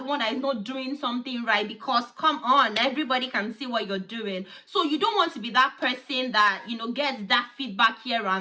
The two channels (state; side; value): identical; both; correlation 1.00